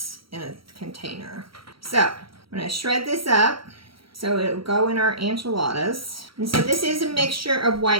in a container. So I'm going to shred this up so it'll go in our enchiladas. And so this is a mixture of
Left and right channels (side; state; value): left; late; 0.75 ms